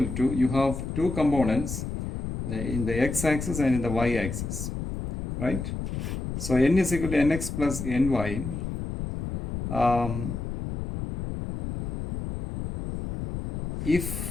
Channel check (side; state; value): left; noise; rumble, 5 dB below the sound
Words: to, you have two components in the x-axis and in the y-axis, right? So n is equal to nx plus ny.